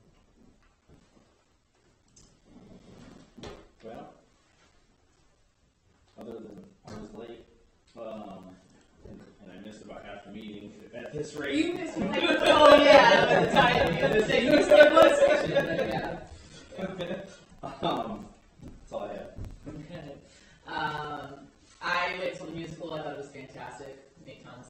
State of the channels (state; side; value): identical; both; correlation 1.00